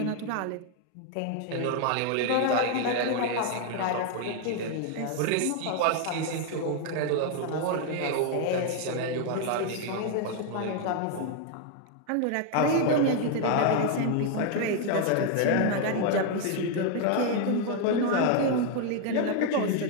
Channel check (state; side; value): different; both; correlation 0.00